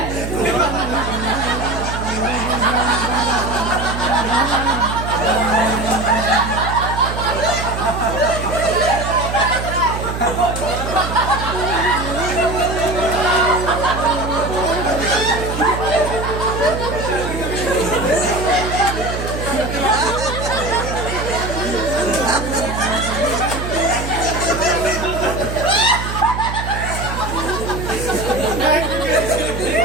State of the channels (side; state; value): right; noise; hum, 6 dB below the sound